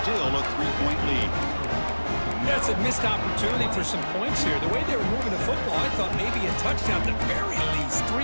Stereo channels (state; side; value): inverted; both; correlation -1.00